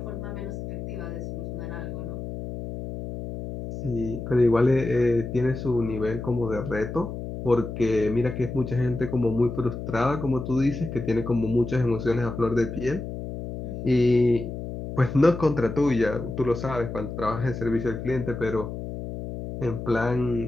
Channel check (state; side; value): noise; left; hum, 7 dB below the sound